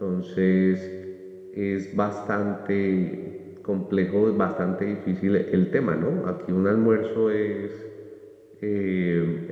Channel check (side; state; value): both; identical; correlation 1.00